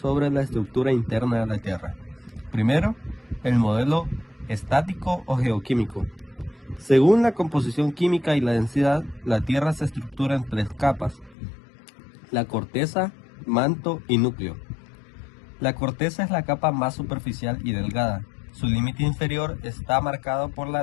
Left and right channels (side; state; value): right; drops out; at 11.4 s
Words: la estructura interna de la Tierra. Primero, el modelo estático o geoquímico. Según la composición química y la densidad, la Tierra se estructura en tres capas: la corteza, manto y núcleo. La corteza es la capa más superficial y delgada. Su límite inferior está marcado por